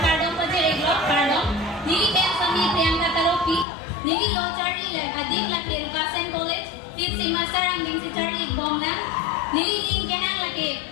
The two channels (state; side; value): drops out; right; at 3.7 s